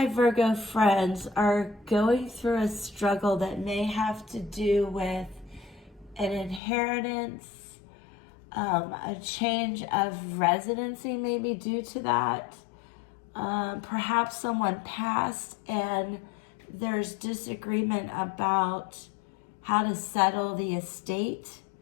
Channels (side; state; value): right; drops out; at 6.6 s